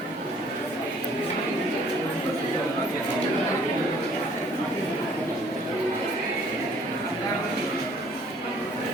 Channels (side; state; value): both; normal; correlation 0.58